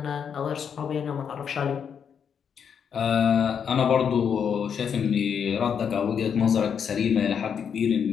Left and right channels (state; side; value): quieter; right; 7.4 dB